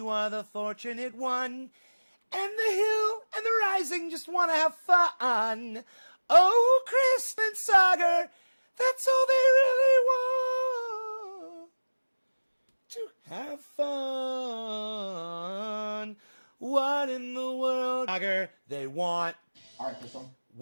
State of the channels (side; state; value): both; inverted; correlation -1.00